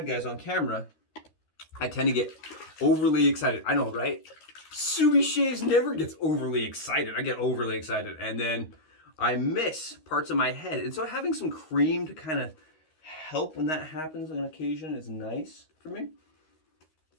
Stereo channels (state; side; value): late; right; 13 ms